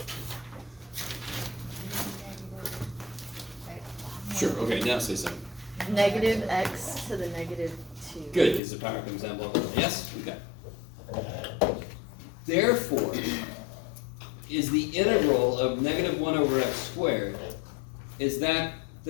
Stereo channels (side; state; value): right; drops out; at 8.6 s